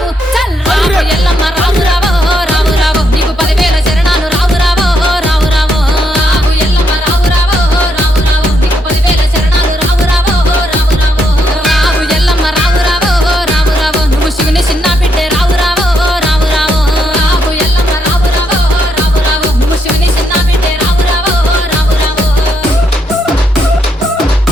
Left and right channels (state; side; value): normal; both; correlation 0.77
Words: చల్ రావు ఎల్లమ్మ రావు రావు రావు రావు నీకు 10,000 శరణాలు రావు రావు రావు రావు రావు ఎల్లమ్మ రావు రావు రావు రావు నీకు 10,000 శరణాలు రావు రావు రావు రావు రావు ఎల్లమ్మ రావు రావు రావు రావు నువ్వు శివుని చిన్న బిడ్డే రావు రావు రావు రావు రావు ఎల్లమ్మ రావు రావు రావు రావు నువ్వు శివుని చిన్న బిడ్డే రావు రావు రావు రావు